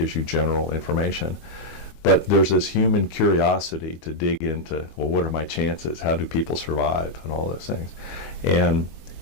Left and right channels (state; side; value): late; right; 22 ms